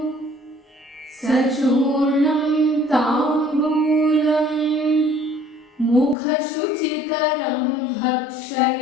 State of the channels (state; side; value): drops out; right; at 6.2 s